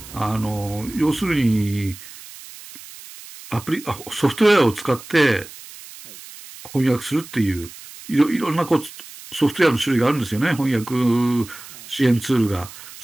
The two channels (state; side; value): noise; right; hiss, 17 dB below the sound